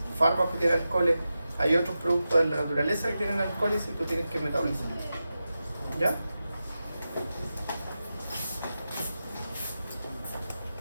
fármacos que tienen alcoholes, hay otros productos de la naturaleza que tienen alcoholes y tú tienes que metabolizar. ¿Ya?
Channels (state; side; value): inverted; both; correlation -0.92